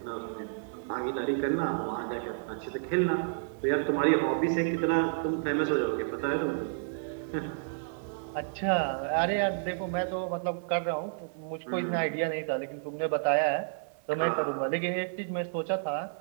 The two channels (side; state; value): left; silent; 56 dB below the other